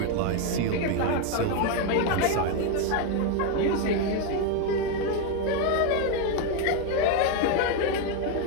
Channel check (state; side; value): different; both; correlation 0.01